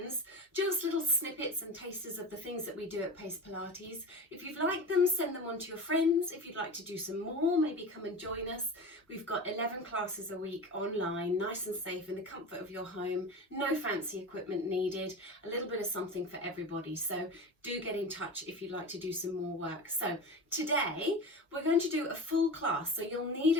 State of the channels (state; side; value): normal; both; correlation 0.29